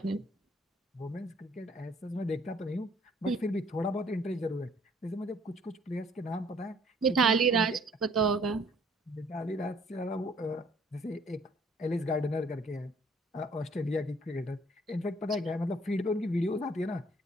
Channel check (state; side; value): normal; both; correlation 0.60